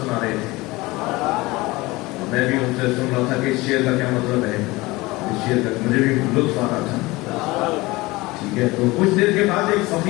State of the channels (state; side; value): quieter; right; 21.3 dB